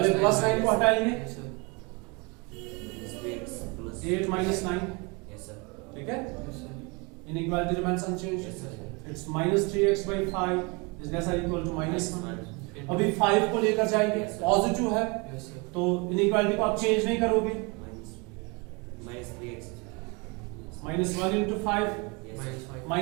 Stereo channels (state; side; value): quieter; left; 28.8 dB